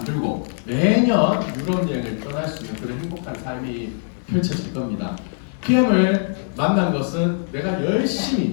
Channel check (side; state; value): right; silent; 60 dB below the other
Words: 매년 유럽 여행을 떠날 수 있는 그런 행복한 삶이 펼쳐질 겁니다. PM을 만난 것은 내가